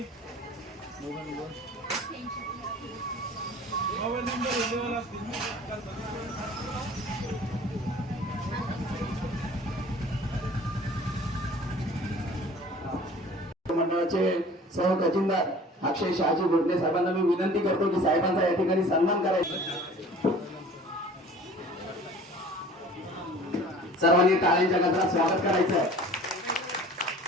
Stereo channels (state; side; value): normal; both; correlation 0.46